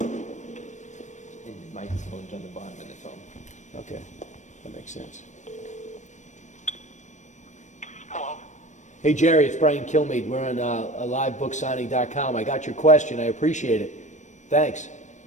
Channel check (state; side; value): late; right; 0.35 ms